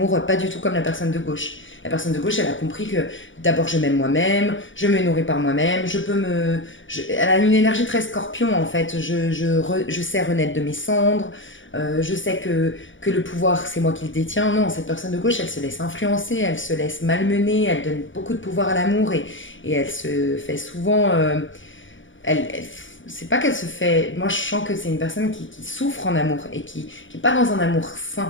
pas du tout comme la personne de gauche. La personne de gauche, elle a compris que d'abord je m'aime moi-même, je me nourris par moi-même, elle a une énergie très scorpion en fait. Je sais renaître de mes cendres, je sais que le pouvoir c'est moi qui le détiens. Non, cette personne de gauche, elle se laisse influencer, elle se laisse malmener, elle donne beaucoup de pouvoir à l'amour et elle se fait souvent elle c'est pas qu'elle se fait. Moi, je sens que c'est une personne qui souffre en amour et qui n'est pas dans un amour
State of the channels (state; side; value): late; right; 0.56 ms